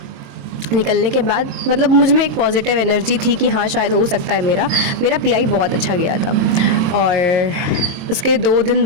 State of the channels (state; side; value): late; left; 23 ms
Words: निकलने के बाद मतलब मुझ में एक पॉजिटिव एनर्जी थी कि हाँ शायद हो सकता है मेरा पीआई बहुत अच्छा गया था। और उसके 2 दिन